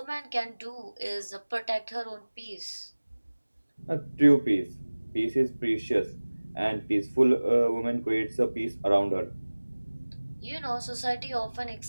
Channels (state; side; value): inverted; both; correlation -1.00